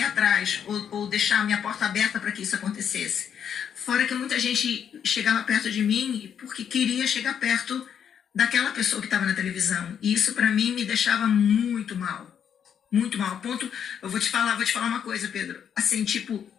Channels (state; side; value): quieter; right; 8.3 dB